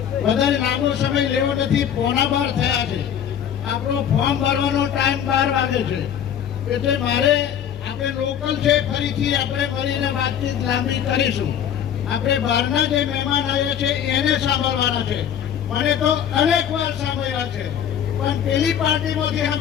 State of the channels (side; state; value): right; quieter; 9.2 dB